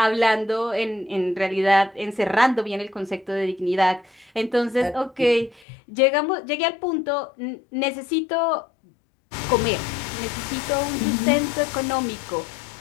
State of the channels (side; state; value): right; drops out; at 5.6 s